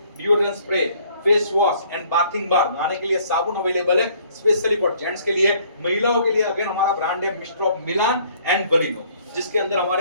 deodorant spray, face wash and bathing bar, नहाने के लिए साबुन अवेलेबल है स्पेशली फॉर जेंट्स के लिए। महिलाओं के लिए अगेन हमारा ब्रांड है मिस्टर ऑफ मिलान एंड बलिनो, जिसके अंदर हमारे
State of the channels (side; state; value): both; inverted; correlation -0.60